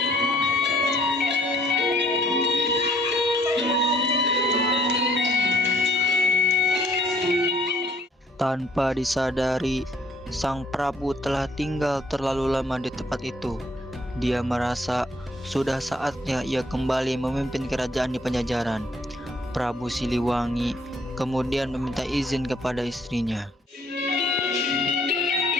Tanpa disadari, Sang Prabu telah tinggal terlalu lama di tempat itu. Dia merasa sudah saatnya ia kembali memimpin kerajaan di Pajajaran. Prabu Siliwangi kemudian meminta izin kepada istrinya.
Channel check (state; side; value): normal; both; correlation 0.62